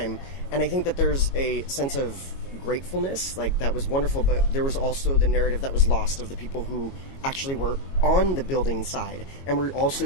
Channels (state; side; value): late; right; 22 ms